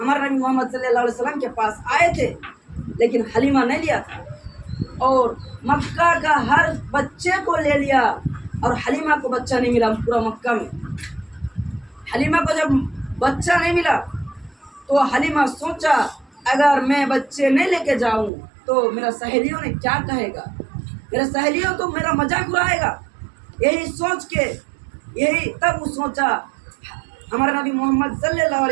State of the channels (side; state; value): left; drops out; at 18.3 s